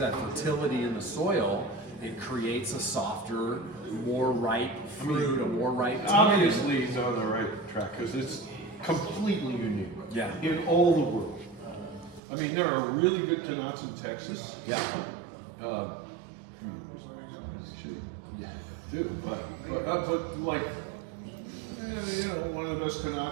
of that fertility in the soil, it creates a softer, more ripe fruit, a more ripe tannin. Obviously, he's on the right track because it's completely unique. Yeah. In all the world. I mean, there are really good Tannats in Texas. Yeah. Yeah, do, but like, you know, one of the best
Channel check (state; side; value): drops out; left; at 12.2 s